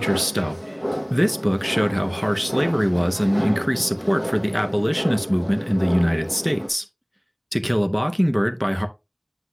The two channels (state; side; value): identical; both; correlation 1.00